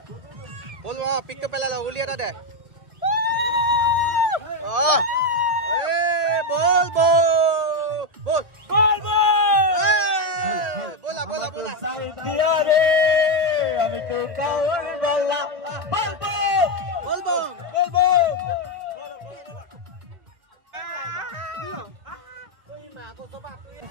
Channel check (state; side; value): late; left; 2.0 ms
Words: বল পিকটো পেলাই ল উলিয়াটা দে